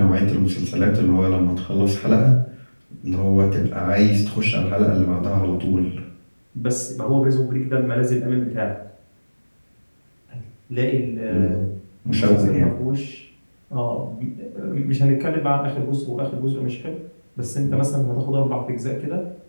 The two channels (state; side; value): inverted; both; correlation -1.00